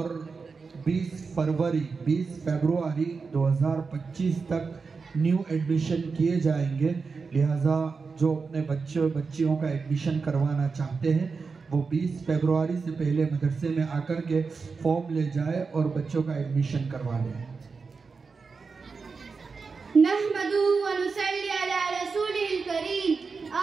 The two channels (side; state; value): left; quieter; 4.8 dB